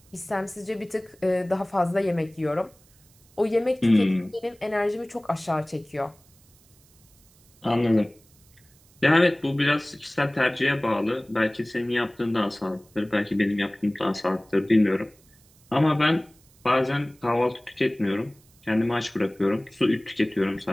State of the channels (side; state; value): right; noise; hiss, 30 dB below the sound